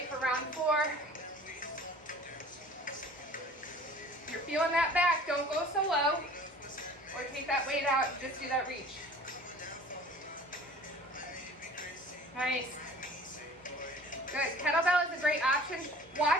for round 4. If you're feeling that back, don't go so low or take that weight out and just do that reach. Nice. Good. Kettlebell is a great option.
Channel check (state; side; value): normal; both; correlation 0.46